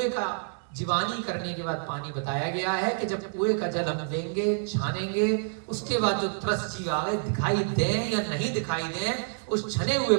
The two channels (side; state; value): left; silent; digital silence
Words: का जीवानी करने के बाद पानी बताया गया है कि जब कुएं का जल हम देंगे, छानेंगे, उसके बाद जो त्रस्त जीव आगे दिखाई दें या नहीं दिखाई दें, उस छने हुए